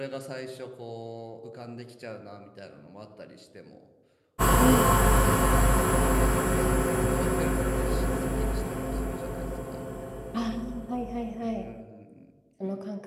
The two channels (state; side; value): identical; both; correlation 1.00